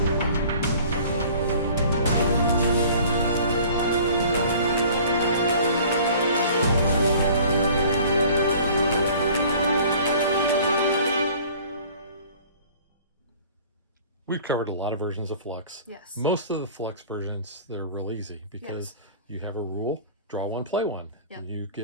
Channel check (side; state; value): both; inverted; correlation -0.48